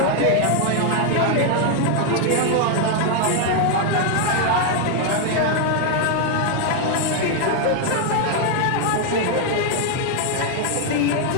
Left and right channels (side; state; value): both; different; correlation 0.00